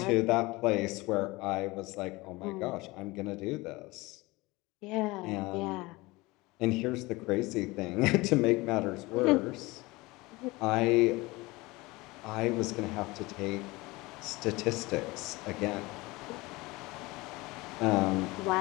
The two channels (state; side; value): quieter; right; 22.2 dB